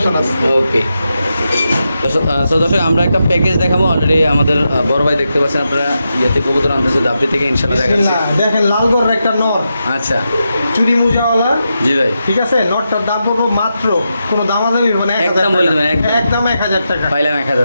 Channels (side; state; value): both; inverted; correlation -0.87